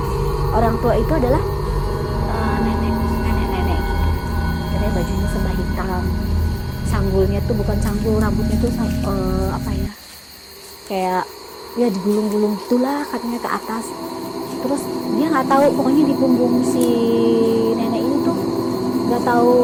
orang tua itu adalah nenek gitu. Katanya bajunya serba hitam, sanggulnya tuh bukan sanggul, rambutnya tuh apa ya, kayak ya digulung-gulung gitulah katanya ke atas. Terus dia nggak tahu, pokoknya di punggung si nenek ini tuh nggak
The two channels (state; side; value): identical; both; correlation 1.00